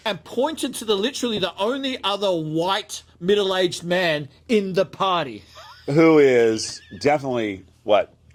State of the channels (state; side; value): identical; both; correlation 1.00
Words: And pointed to literally the only other white middle-aged man in the party. Who is definitely,